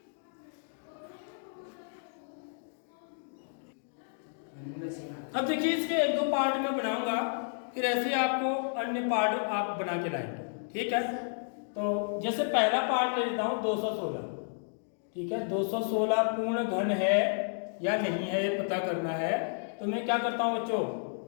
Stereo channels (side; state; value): right; silent; digital silence